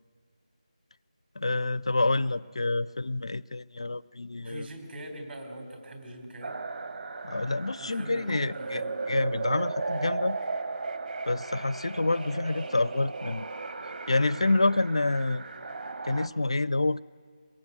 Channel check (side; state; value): both; inverted; correlation -0.92